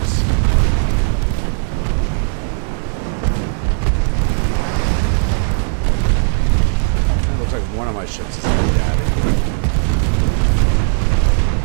It looks like one of my ships is headed at it.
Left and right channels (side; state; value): left; silent; digital silence